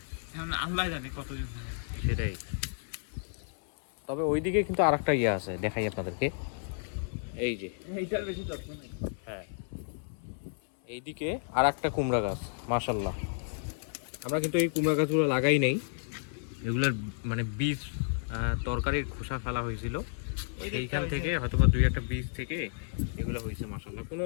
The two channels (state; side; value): silent; right; 57 dB below the other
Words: এখন আল্লাহ জানে কতদিন ধরে। সেটাই। তবে ওইদিকে কিন্তু আর একটা ইয়ে আছে, দেখাই আপনাদেরকে। এই যে, এইটার বেশি যত্ন নেই। হ্যাঁ, এইদিকে আর একটা কুমড়া গাছ। মাশাল্লাহ, আমরা কিন্তু এই কুমড়া গাছগুলো লাগাই নাই, এগুলার মানে বীজ তরকারির খোসা ফেলা হয়েছিল, সেইখান থেকে হয়তো বা দুই একটা বীজ থেকে এগুলো হয়েছে। মাশাল্লাহ, কোনো